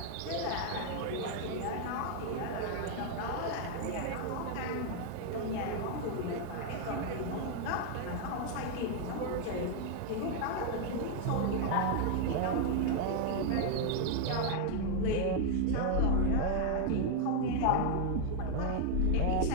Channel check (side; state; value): both; different; correlation 0.00